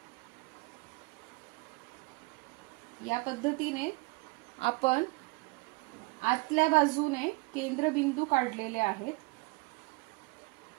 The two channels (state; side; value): quieter; left; 27.3 dB